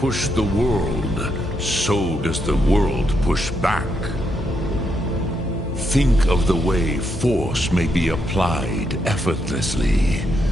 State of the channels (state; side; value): noise; left; hum, 9 dB below the sound